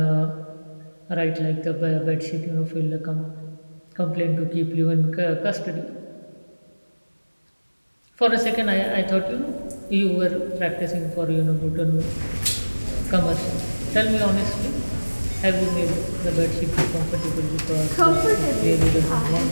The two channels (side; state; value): both; inverted; correlation -1.00